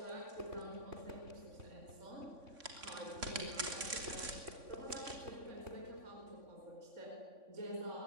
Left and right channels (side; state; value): left; late; 3.5 ms